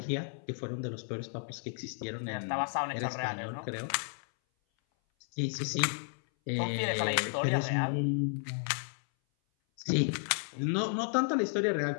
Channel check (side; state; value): right; silent; 56 dB below the other